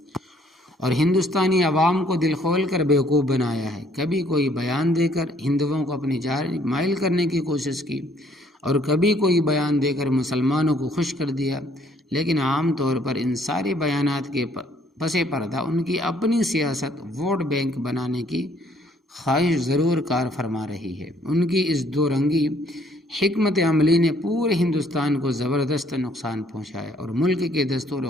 اور ہندوستانی عوام کو دل کھول کر بیوقوف بنایا ہے۔ کبھی کوئی بیان دے کر ہندوؤں کو اپنی جانب مائل کرنے کی کوشش کی اور کبھی کوئی بیان دے کر مسلمانوں کو خوش کر دیا، لیکن عام طور پر ان سارے بیانات کے پس پردہ ان کی اپنی سیاست ووٹ بینک بنانے کی خواہش ضرور کار فرما رہی ہے۔ ان کی اس دو رنگی حکمت عملی نے پورے ہندوستان کو زبردست نقصان پہنچایا اور ملک کے دستور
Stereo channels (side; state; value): both; normal; correlation 0.63